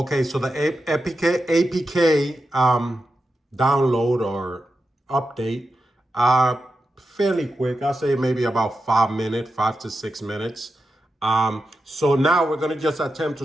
so the APK download or update, fairly quick. I'll say maybe about 5 minutes, 5 to 6 minutes. So now we're gonna just attempt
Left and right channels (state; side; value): normal; both; correlation 0.89